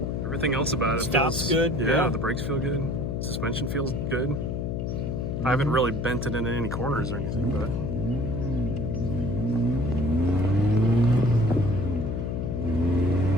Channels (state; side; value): noise; left; hum, 2 dB below the sound